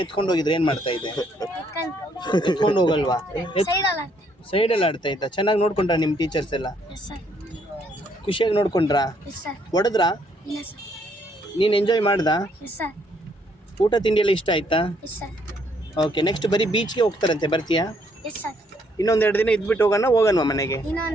ಎತ್ಕೊಂಡು ಹೋಗಿದ್ರೆ ಏನು ಮಾಡ್ತಾ ಇದ್ದೆ? ಎತ್ಕೊಂಡು ಹೋಗಲ್ವಾ? ಸೈಡಲ್ಲ. ಸೈಡಲ್ಲಿ ಆಡ್ತಾ ಇದ್ದ. ಚೆನ್ನಾಗಿ ನೋಡ್ಕೊಂಡ್ರಾ ನಿಮ್ಮ ಟೀಚರ್ಸ್ ಎಲ್ಲ? Yes sir. ಖುಷಿಯಾಗಿ ನೋಡ್ಕೊಂಡ್ರಾ? Yes sir. ಹೊಡೆದ್ರಾ? ಇಲ್ಲ ಸರ್. ನೀನು ಎಂಜಾಯ್ ಮಾಡ್ದಾ? Yes sir. ಊಟ ತಿಂಡಿ ಎಲ್ಲ ಇಷ್ಟ ಆಯ್ತಾ? Yes sir. ಓಕೆ, ನೆಕ್ಸ್ಟ್ ಬರೀ ಬೀಚ್ಗೆ ಹೋಗ್ತಾರಂತೆ, ಬರ್ತೀಯಾ? Yes sir. ಇನ್ನೊಂದು 2 ದಿನ ಇದ್ಬಿಟ್ಟು ಹೋಗೋಣವಾ ಮನೆಗೆ?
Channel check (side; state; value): both; normal; correlation 0.69